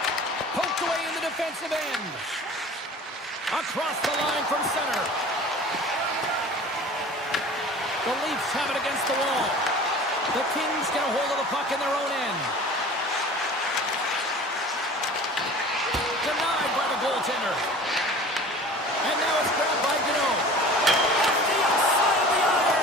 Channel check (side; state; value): both; normal; correlation 0.42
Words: Poked away in the defensive end. Across the line from center. The Leafs have it against the wall. The Kings get a hold of the puck in their own end. Denied by the goaltender. And now it's grabbed by Gano. Off the outside of the